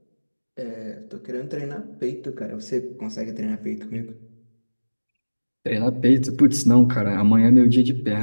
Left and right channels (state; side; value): inverted; both; correlation -1.00